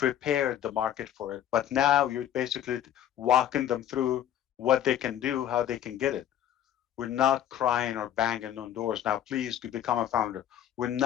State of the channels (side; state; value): right; quieter; 10.9 dB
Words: the market for it. But now you're basically walking them through what they can do, how they can get it. We're not crying or banging on doors. Now, please to become a founder. We're